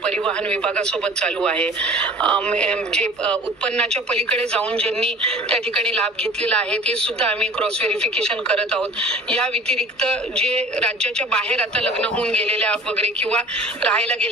परिवहन विभागासोबत चालू आहे. जे उत्पन्नाच्या पलीकडे जाऊन ज्यांनी त्या ठिकाणी लाभ घेतलेला आहे ते सुद्धा आम्ही क्रॉस व्हेरिफिकेशन करत आहोत. या व्यतिरिक्त जे राज्याच्या बाहेर आता लग्न होऊन गेलेल्या वगैरे किंवा राहायला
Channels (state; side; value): normal; both; correlation 0.45